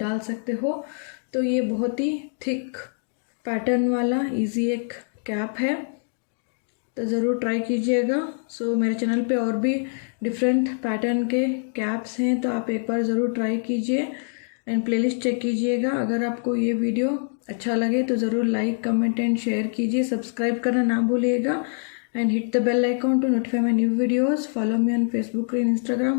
सकते हो। तो ये बहुत ही थिक पैटर्न वाला इजी एक कैप है, तो ज़रूर ट्राई कीजिएगा। सो मेरे चैनल पे और भी डिफरेंट पैटर्न के कैप्स हैं, तो आप एक बार ज़रूर ट्राई कीजिए एंड प्लेलिस्ट चेक कीजिएगा। अगर आपको ये वीडियो अच्छा लगे तो ज़रूर लाइक, कमेंट एंड शेयर कीजिए। सब्सक्राइब करना ना भूलिएगा and hit the bell icon to notify my new videos. Follow me on Facebook and Instagram,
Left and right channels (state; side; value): silent; right; 62 dB below the other